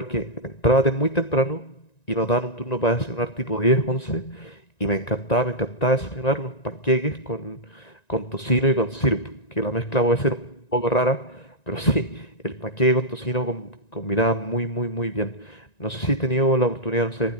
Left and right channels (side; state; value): right; late; 1.9 ms